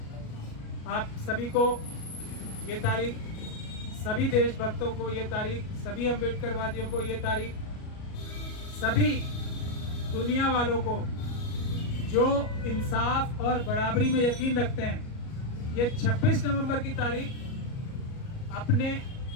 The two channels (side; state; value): right; late; 38 ms